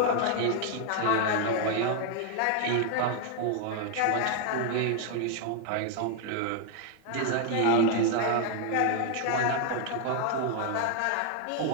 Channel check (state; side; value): different; both; correlation 0.00